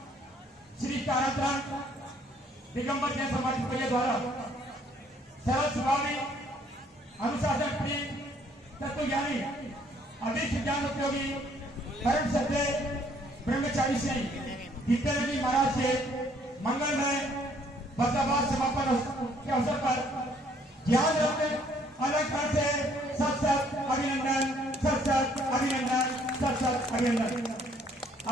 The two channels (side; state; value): both; normal; correlation 0.63